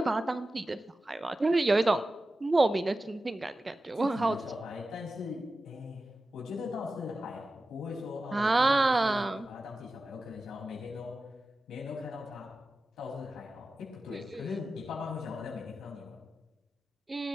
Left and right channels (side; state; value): both; normal; correlation 0.93